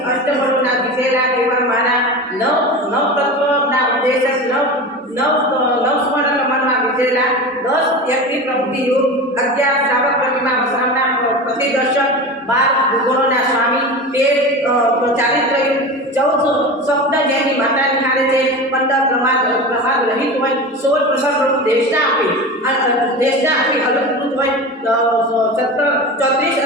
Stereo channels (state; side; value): normal; both; correlation 0.28